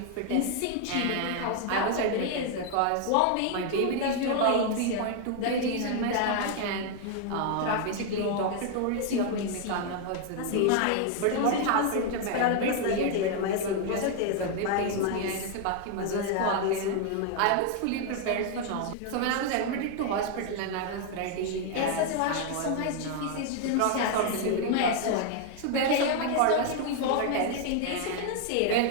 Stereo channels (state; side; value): different; both; correlation 0.00